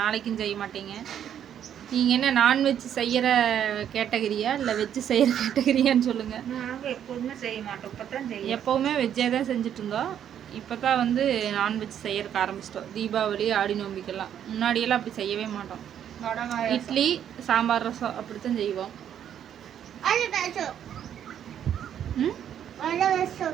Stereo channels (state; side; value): quieter; left; 9.6 dB